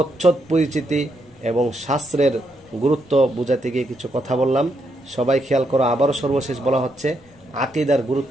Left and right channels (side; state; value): left; noise; rumble, 28 dB below the sound